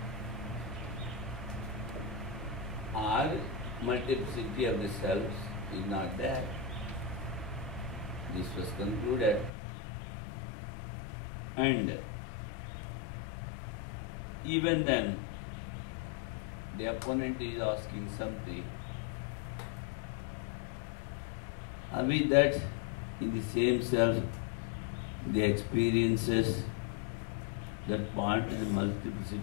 or multiplicity of the selves is not there. This was concluded, and even then the opponent is asking something. Are we that in the same self the experiences that point to the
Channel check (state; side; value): drops out; right; at 9.5 s